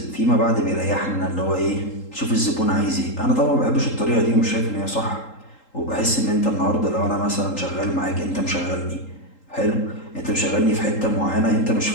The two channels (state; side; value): late; right; 3.8 ms